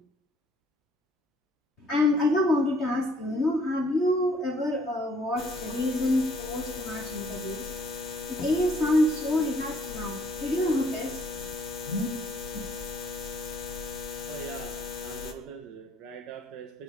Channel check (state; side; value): normal; both; correlation 0.63